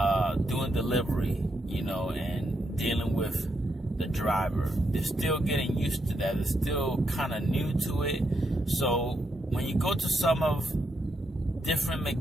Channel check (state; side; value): normal; both; correlation 0.81